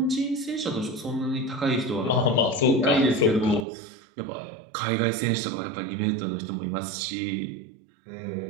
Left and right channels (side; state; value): left; drops out; at 3.7 s